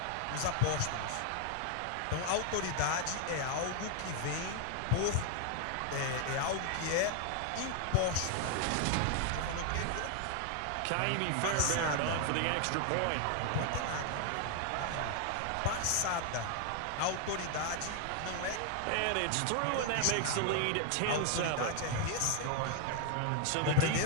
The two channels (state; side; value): different; both; correlation 0.00